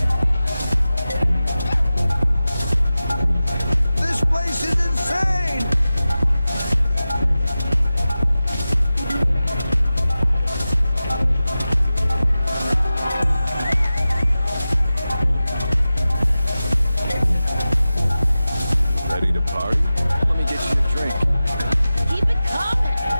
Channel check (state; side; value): inverted; both; correlation -0.95